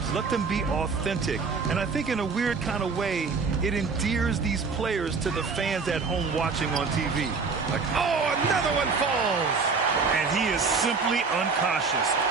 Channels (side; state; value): left; quieter; 4.8 dB